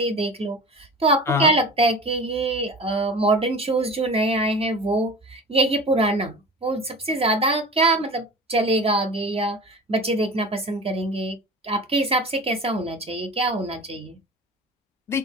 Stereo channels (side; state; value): both; normal; correlation 0.36